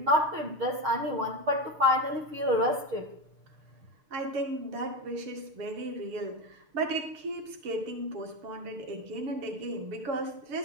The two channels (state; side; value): late; left; 6.6 ms